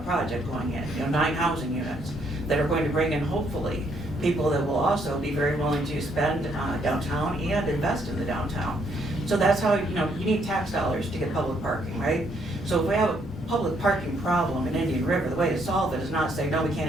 project going in, 9 housing units that are going to bring in, hopefully, people that will also be very willing to spend downtown and invest in the downtown. So that's how, you need tax dollars to get public parking, right? So if we have a public parking problem in Indian River, the way to solve it is not say, no, we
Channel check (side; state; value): both; normal; correlation 0.71